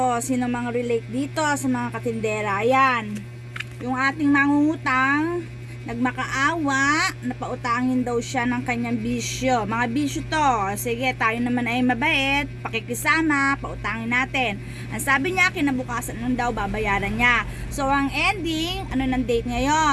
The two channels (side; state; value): both; identical; correlation 1.00